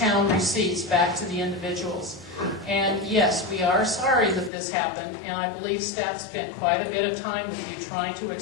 receipts back to the individuals. And yes, we are sorry that this happened, and I believe staff spent quite a bit of time with you trying to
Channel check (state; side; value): drops out; right; at 4.5 s